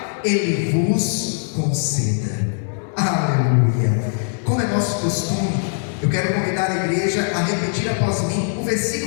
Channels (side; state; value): right; silent; 65 dB below the other